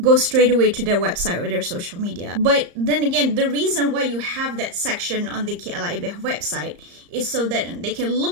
go straight away to their website or their social media. But then again, the reason why you have that section on the KLIBF website is so that they can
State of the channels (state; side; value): late; left; 34 ms